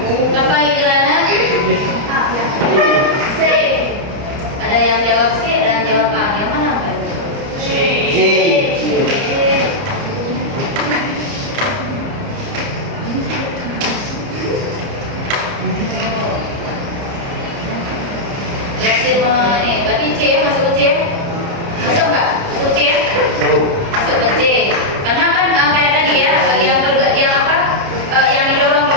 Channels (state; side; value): late; left; 30 ms